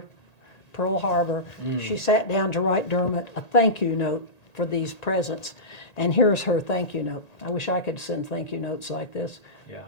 Pearl Harbor, she sat down to write Dermot a thank you note for these presents. And here's her thank you note. I wish I could send thank you notes like this. Yeah.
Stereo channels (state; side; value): late; right; 1.8 ms